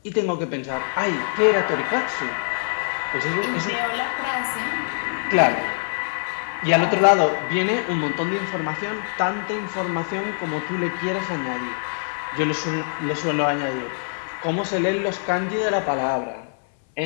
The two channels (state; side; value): silent; right; 56 dB below the other